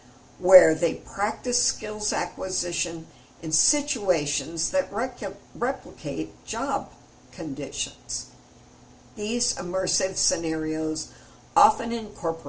where they practice skills acquisition in situations that replicate job conditions. These immersive scenarios often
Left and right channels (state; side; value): identical; both; correlation 1.00